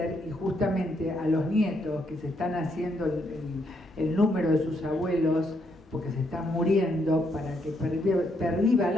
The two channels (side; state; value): both; normal; correlation 0.75